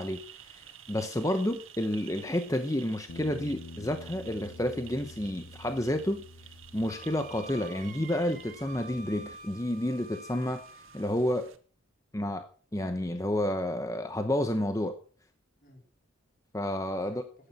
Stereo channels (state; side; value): normal; both; correlation 0.79